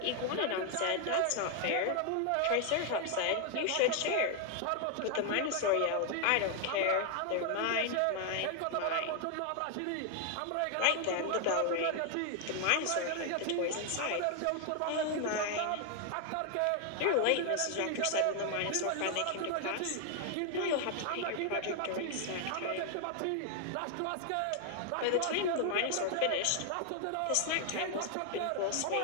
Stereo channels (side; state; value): both; different; correlation 0.00